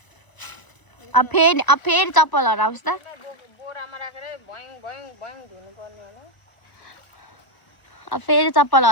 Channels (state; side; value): late; right; 1.0 ms